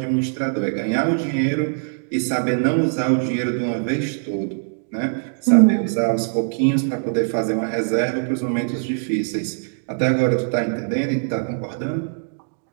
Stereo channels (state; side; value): silent; left; digital silence